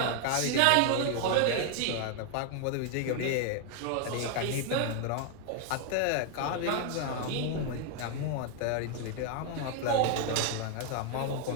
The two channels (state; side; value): different; both; correlation 0.00